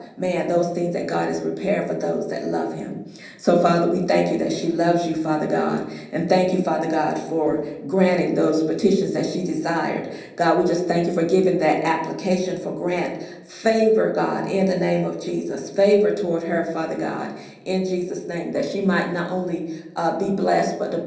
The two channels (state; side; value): identical; both; correlation 1.00